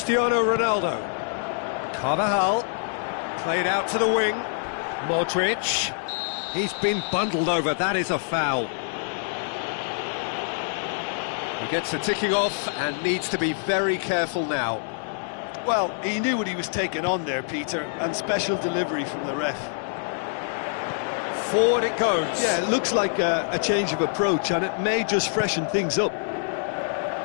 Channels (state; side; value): silent; right; digital silence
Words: Ronaldo. Carvajal. Played out to the wing. Modric. He's been bundled over, that is a foul. He gets a ticking off and needs to be very careful now. Well, he knew what he was taking on there, Peter, and special delivery from the ref. Forward it goes. Yeah, it looks like a change of approach, and it may just freshen things up.